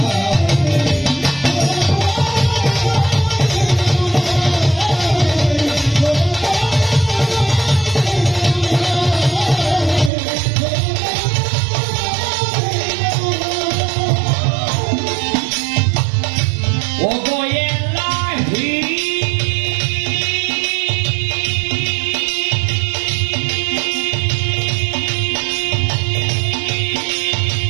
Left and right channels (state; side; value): drops out; left; at 10.1 s